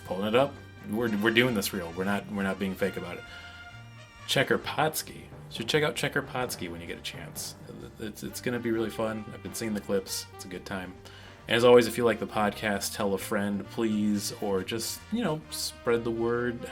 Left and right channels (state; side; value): identical; both; correlation 1.00